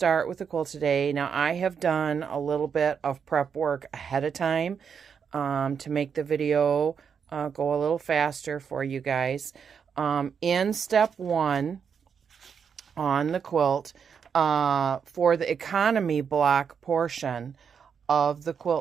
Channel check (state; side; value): quieter; left; 6.8 dB